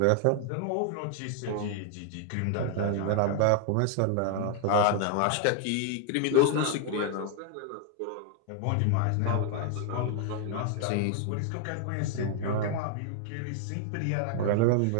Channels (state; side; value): different; both; correlation 0.00